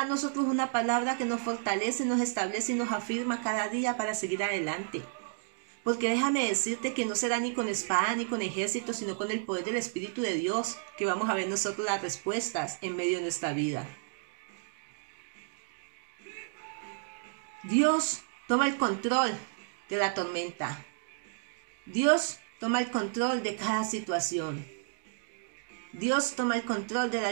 a nosotros una palabra que nos fortalece, nos establece y nos afirma cada día para seguir adelante. Porque déjame decirte que no será ni con espada ni con ejército, sino con el poder del Espíritu de Dios que vamos a ver nosotros las respuestas en medio de nuestra vida. Dios toma el control de la tormenta. Dios toma el control de cada situación. Dios toma el control de la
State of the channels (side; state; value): left; silent; digital silence